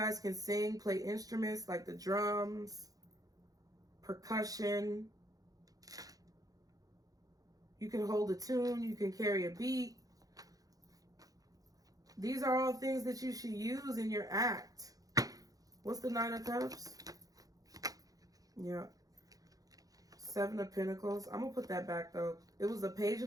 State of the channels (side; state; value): left; late; 0.17 ms